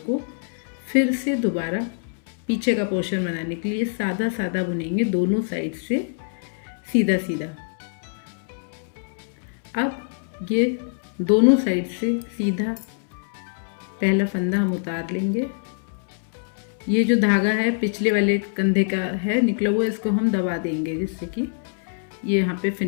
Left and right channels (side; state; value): right; silent; 62 dB below the other